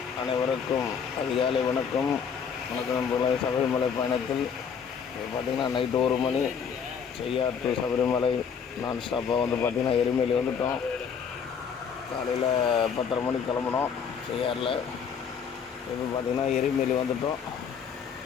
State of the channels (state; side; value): quieter; right; 6.8 dB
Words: அனைவருக்கும் அதிகாலை வணக்கம். வணக்கம் நண்பர்களே. சபரிமலை பயணத்தில் பார்த்திங்கன்னா நைட்டு 1 மணி செய்யார் டு சபரிமலை நான் ஸ்டாப்பாக வந்து பார்த்திங்கன்னா எருமேலி வந்துவிட்டோம். காலையில் 10:30 மணிக்கு கிளம்புனோம் செய்யாரில். இப்போ பார்த்திங்கன்னா எருமேலி வந்துவிட்டோம்.